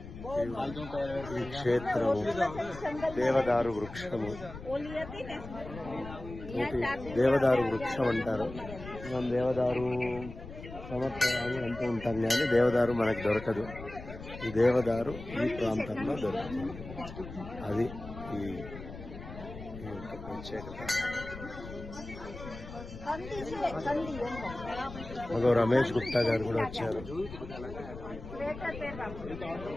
ఈ క్షేత్రము, దేవదారు వృక్షము. దేవదారు వృక్షం అంటారు. మనం దేవదారు సమర్పయాలు అంటూ ఉంటాం, కానీ దేవదారు మనకు దొరకదు. ఈ దేవదారు ఈ ప్రాంతంలో దొరుకుతుంది. అది ఈ యొక్క ప్రత్యేకత. మగో రమేష్ గుప్తా గారు కూడా వచ్చారు.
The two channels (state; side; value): noise; left; rumble, 12 dB below the sound